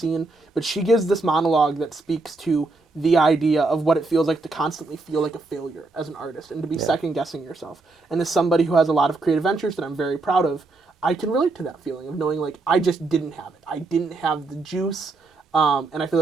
but she gives this monologue that speaks to the idea of what it feels like to constantly feel like a failure as an artist and to be second-guessing yourself. And as somebody who has a lot of creative ventures that I'm very proud of, I can relate to that feeling of knowing like I just didn't have it. I didn't have the juice, and I feel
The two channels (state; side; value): quieter; left; 3.5 dB